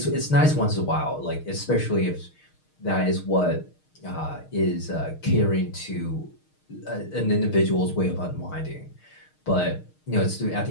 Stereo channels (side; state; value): right; late; 6.5 ms